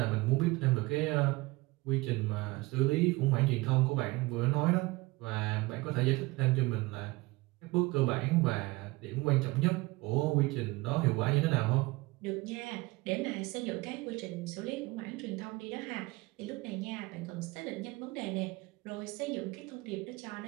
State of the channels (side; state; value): left; quieter; 22.5 dB